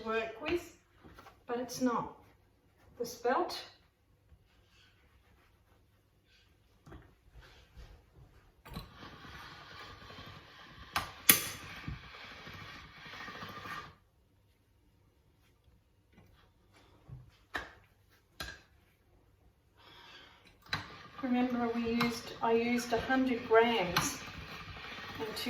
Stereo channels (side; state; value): both; identical; correlation 1.00